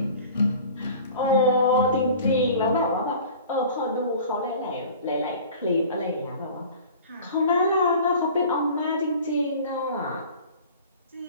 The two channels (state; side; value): inverted; both; correlation -0.43